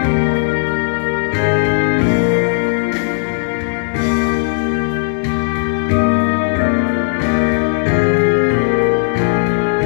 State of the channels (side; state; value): right; silent; digital silence